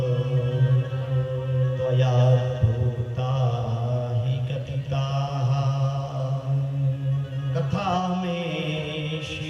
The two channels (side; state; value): both; identical; correlation 1.00